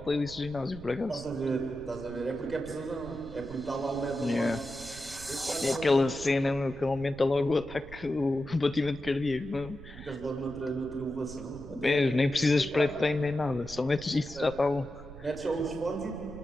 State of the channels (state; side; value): noise; right; rumble, 16 dB below the sound